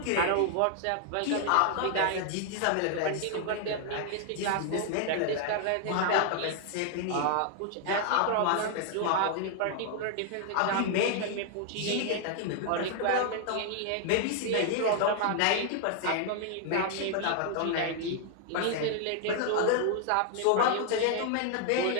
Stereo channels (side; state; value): both; different; correlation 0.00